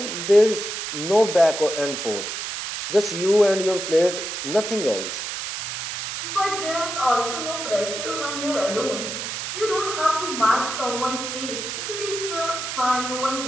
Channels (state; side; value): noise; right; hiss, 5 dB below the sound